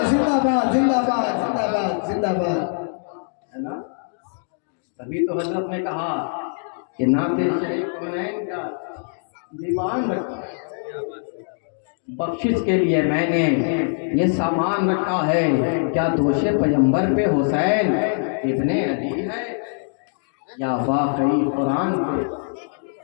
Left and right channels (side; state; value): right; silent; digital silence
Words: زندہ باد، زندہ باد، زندہ باد، زندہ باد۔ ہے نا؟ تبھی تو حضرت نے کہا کہ نعت شریف کونین کا دیوان رکھا، بخشش کے لیے میں نے یہ سامان رکھا ہے۔ کیا دوش پیغمبر پہ حسین ابن علی ہے یا واقعی قرآن پہ؟